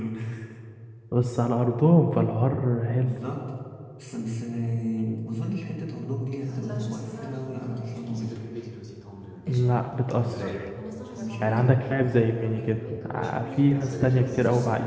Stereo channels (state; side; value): identical; both; correlation 1.00